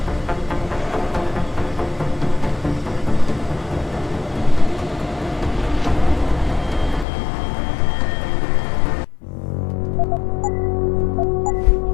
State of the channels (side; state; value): right; drops out; at 7.1 s